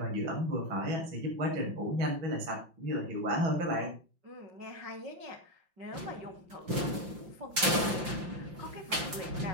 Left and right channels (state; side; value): late; left; 5.8 ms